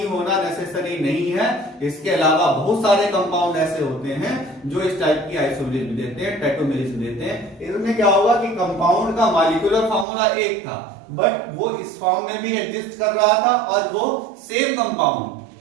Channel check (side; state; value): left; drops out; at 10.1 s